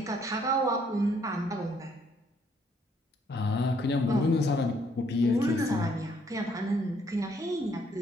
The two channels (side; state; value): both; normal; correlation 0.67